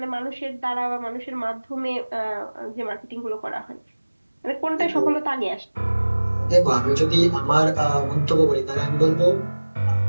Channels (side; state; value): both; inverted; correlation -1.00